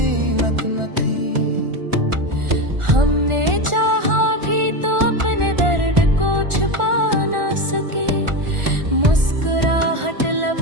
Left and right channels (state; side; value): late; left; 1.4 ms